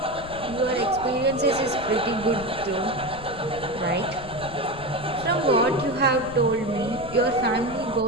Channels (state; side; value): noise; left; rumble, 16 dB below the sound